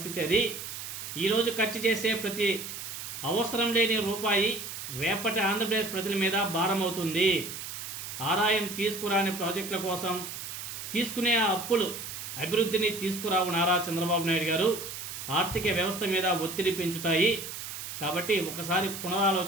అది. ఈరోజు ఖర్చు చేసే ప్రతి అవసరం లేని రూపాయి రేపటి ఆంధ్రప్రదేశ్ ప్రజల మీద భారం అవుతుంది. ఆదాయం తీసుకురాని ప్రాజెక్టుల కోసం తీసుకునే అప్పులు అభివృద్ధిని తీసుకురావు నారా చంద్రబాబు నాయుడు గారు. ఆర్థిక వ్యవస్థ మీద ఒత్తిడి పెంచుతాయి. కాబట్టి ఒకసారి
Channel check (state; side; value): noise; right; hiss, 8 dB below the sound